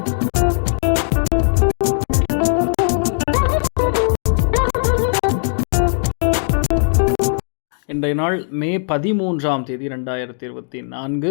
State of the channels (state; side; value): silent; right; digital silence